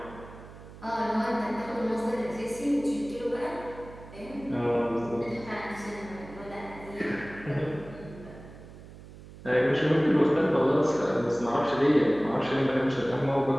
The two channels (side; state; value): right; noise; hum, 17 dB below the sound